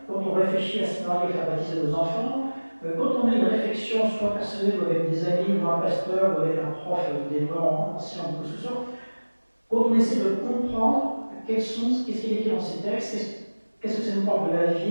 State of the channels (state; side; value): inverted; both; correlation -1.00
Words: quand on réfléchit à ce qu'on arrive à faire baptiser nos enfants, quand on a une réflexion soit personnelle ou avec des amis, ou un pasteur, ou avec un prof d'éléments anciens ou ce soit, quand on essaie de comprendre qu'est-ce qui est écrit dans ces textes, qu'est-ce que ça nous parle de la